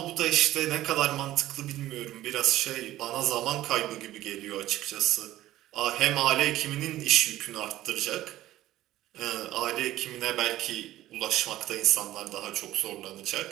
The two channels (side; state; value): left; quieter; 14.8 dB